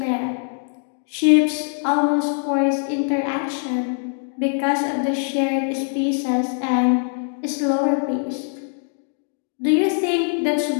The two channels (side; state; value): right; silent; 59 dB below the other